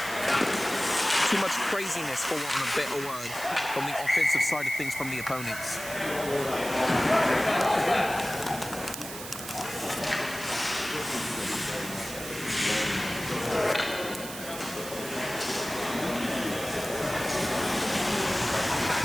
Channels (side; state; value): right; noise; hiss, 10 dB below the sound